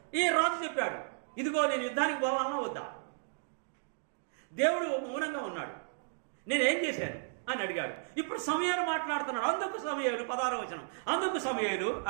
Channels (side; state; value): left; silent; digital silence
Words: ఈ రాజు చెప్పాడు, ఇదిగో నేను యుద్ధానికి పోవాలన్నా వద్దా? దేవుడు మౌనంగా ఉన్నాడు. నేనేం చేశాను అని అడిగాడు. ఇప్పుడు సమయాలు మాట్లాడుతున్నాడు. అందుకు సమయాలు 16వ వచనం. అందుకు సమయాలు